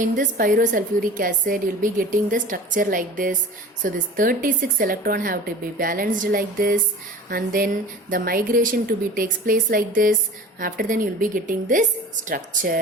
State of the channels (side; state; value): both; normal; correlation 0.39